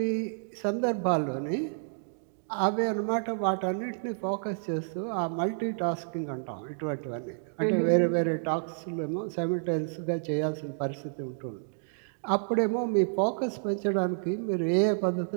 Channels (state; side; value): silent; left; digital silence